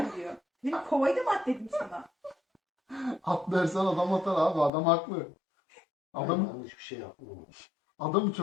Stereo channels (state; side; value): drops out; right; at 4.7 s